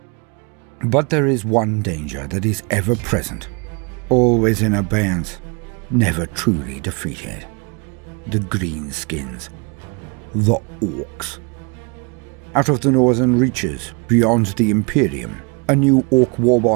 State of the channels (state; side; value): quieter; left; 32.2 dB